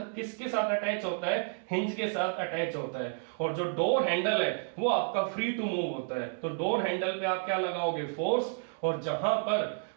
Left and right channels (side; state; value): left; silent; 57 dB below the other